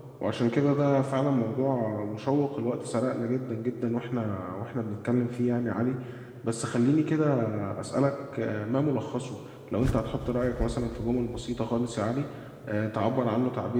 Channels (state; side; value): identical; both; correlation 1.00